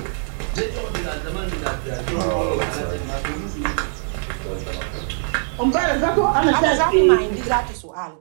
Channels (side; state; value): left; silent; digital silence